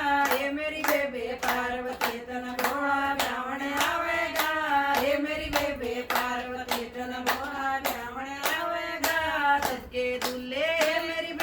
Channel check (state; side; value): identical; both; correlation 1.00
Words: हे मेरी बेबे पार्वती तन भोला ब्राह्मण आवेगा। हे मेरी बेबे पार्वती तन भोला ब्राह्मण आवेगा। सबके दूल्हे मेरी